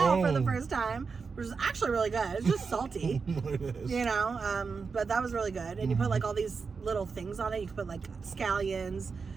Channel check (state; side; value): quieter; left; 5.1 dB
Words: for the Oh. first time, which is actually really good. It's just salty, It is. you know, but that was really good. And you put like all these little things on it. You could put like scallions,